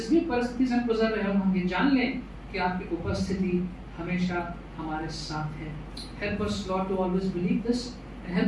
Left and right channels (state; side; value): identical; both; correlation 1.00